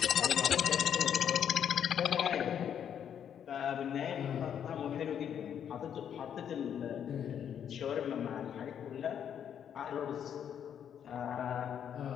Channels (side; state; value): right; quieter; 8.8 dB